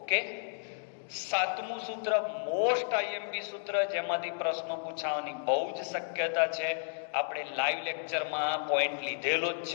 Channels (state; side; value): silent; right; digital silence